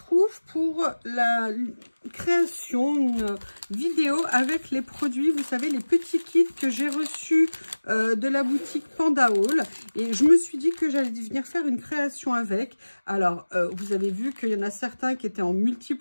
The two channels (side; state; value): both; inverted; correlation -1.00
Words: pour la création, une vidéo avec les produits, vous savez, les petits kits que j'ai reçus de la boutique Panda Haul. Et je me suis dit que j'allais venir faire une création avec. Alors, vous avez vu qu'il y en a certains qui étaient en